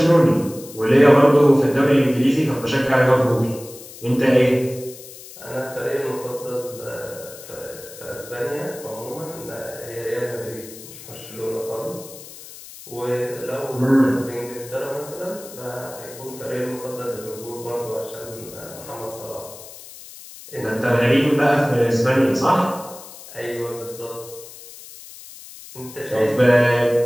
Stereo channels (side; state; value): left; noise; hiss, 16 dB below the sound